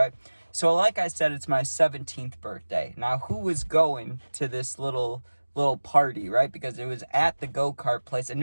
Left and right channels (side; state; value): both; inverted; correlation -1.00